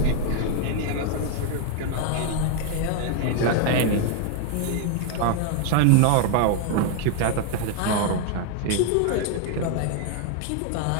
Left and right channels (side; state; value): both; different; correlation 0.00